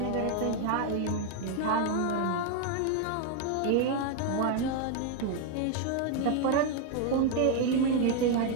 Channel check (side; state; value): both; different; correlation 0.01